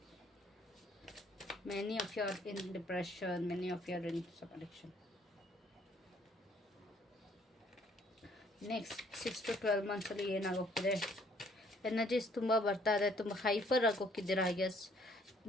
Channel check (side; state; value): both; normal; correlation 0.63